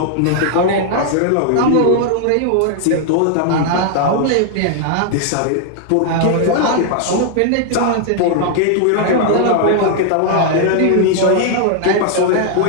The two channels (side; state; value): both; different; correlation 0.00